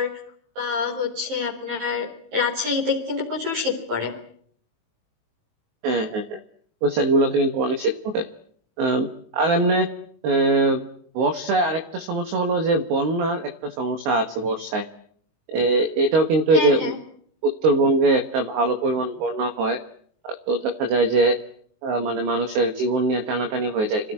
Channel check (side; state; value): left; late; 19 ms